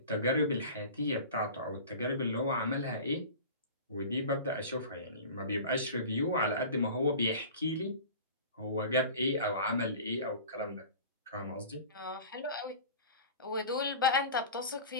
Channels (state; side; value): inverted; both; correlation -0.37